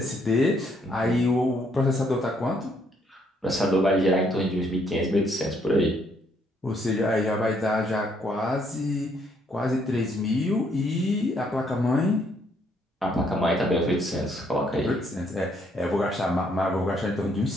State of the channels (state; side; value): normal; both; correlation 0.70